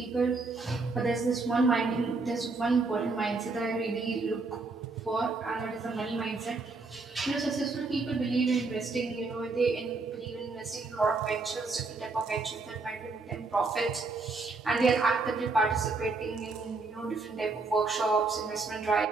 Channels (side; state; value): left; quieter; 3.8 dB